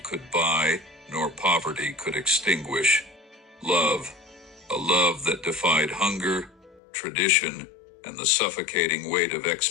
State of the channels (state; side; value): drops out; right; at 6.8 s